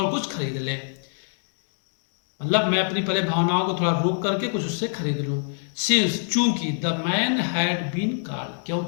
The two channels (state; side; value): silent; right; digital silence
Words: कुछ खरीद ले, मतलब मैं अपनी पहले भावनाओं को थोड़ा रोक करके कुछ उससे खरीद लूं। सिंस, चूंकि the man had been called,